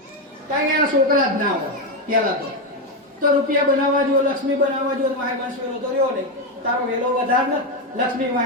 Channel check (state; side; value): normal; both; correlation 0.08